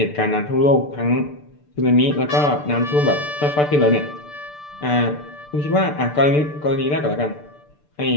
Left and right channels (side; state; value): right; late; 6.8 ms